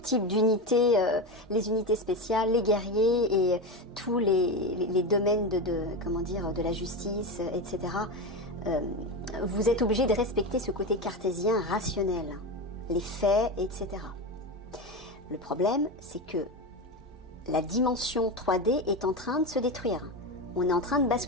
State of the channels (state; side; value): normal; both; correlation 0.18